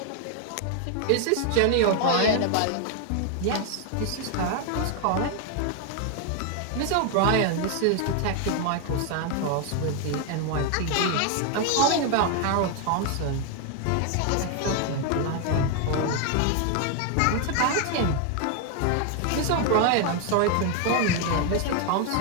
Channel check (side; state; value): both; different; correlation 0.01